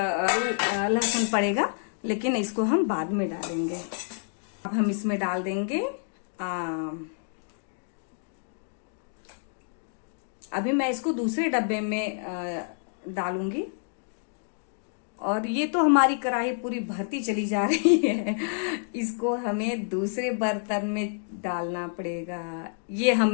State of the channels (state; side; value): silent; right; digital silence